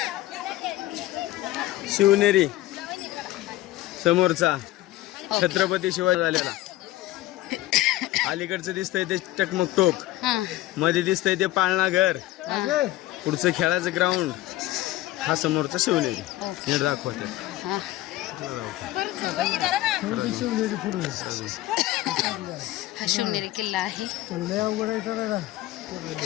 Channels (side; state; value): right; quieter; 16.3 dB